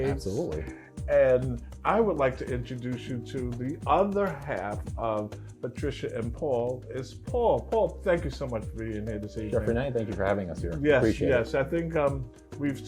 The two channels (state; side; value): identical; both; correlation 1.00